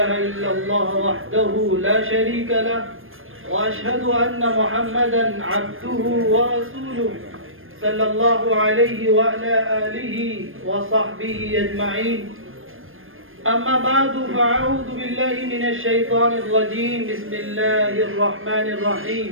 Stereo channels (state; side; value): late; left; 0.60 ms